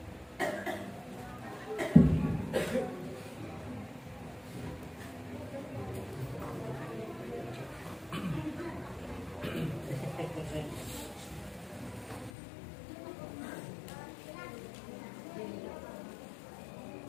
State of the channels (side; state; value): right; drops out; at 12.3 s